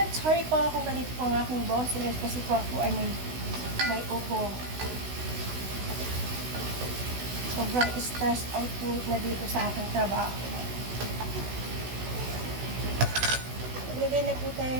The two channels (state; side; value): late; left; 16 ms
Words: sorry po kung ganito po ang aking boses kasi po ako ay may ubo. Sobrang stress out po na dito sa aking trabaho. Maglagay na po